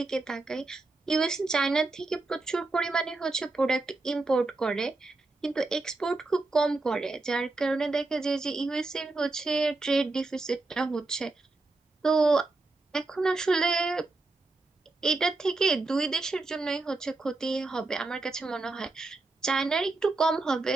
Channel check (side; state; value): left; quieter; 3.3 dB